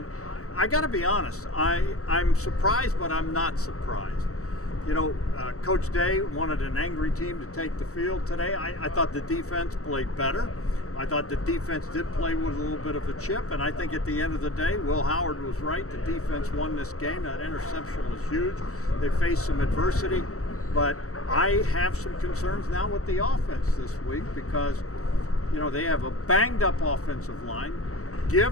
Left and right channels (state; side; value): late; right; 0.65 ms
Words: I gotta be honest, I'm surprised, but I'm not surprised. You know, Coach Day wanted an angry team to take the field today. I thought the defense played better. I thought the defense did play with a little bit of a chip, and I think at the end of the day, Will Howard was right. The defense won this game. That interception was huge. They faced some adversity, but I have some concerns now with the offense this week because, you know, they have a banged up offensive line.